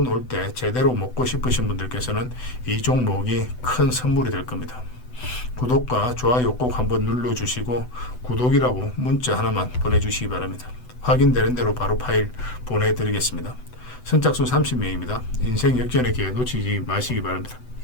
올 때 제대로 먹고 싶으신 분들께서는 이 종목이 큰 선물이 될 겁니다. 구독과 좋아요 꼭 한번 눌러주시고 구독이라고 문자 하나만 보내주시기 바랍니다. 확인되는 대로 바로 파일 보내드리겠습니다. 선착순 30명입니다. 인생 역전의 기회 놓치지 마시기 바랍니다.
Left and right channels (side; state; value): right; late; 8.0 ms